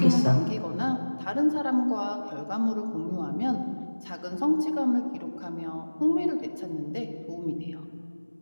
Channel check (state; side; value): inverted; both; correlation -1.00